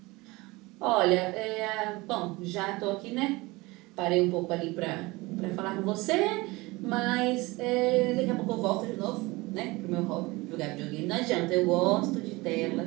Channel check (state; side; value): quieter; left; 22.5 dB